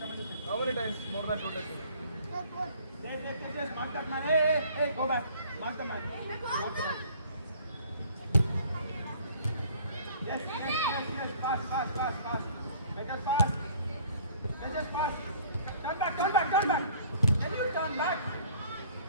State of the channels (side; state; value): both; inverted; correlation -0.54